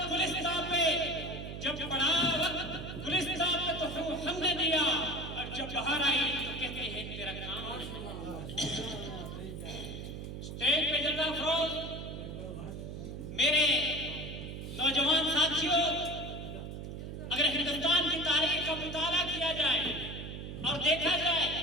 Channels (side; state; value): right; noise; hum, 8 dB below the sound